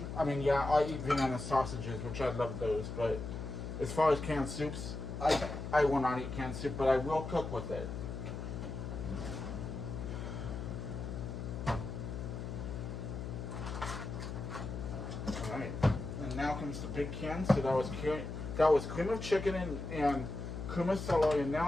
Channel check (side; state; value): left; noise; hum, 6 dB below the sound